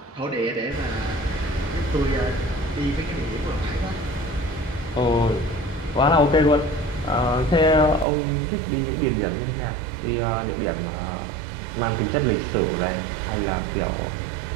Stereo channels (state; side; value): drops out; left; at 8.1 s